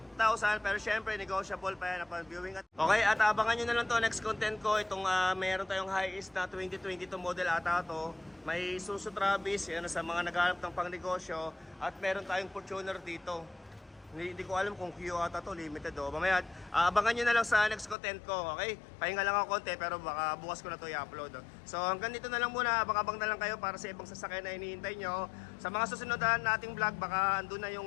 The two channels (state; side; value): drops out; right; at 17.9 s